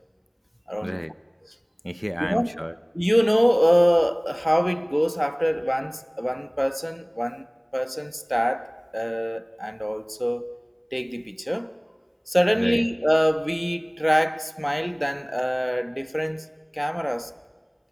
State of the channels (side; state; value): both; identical; correlation 1.00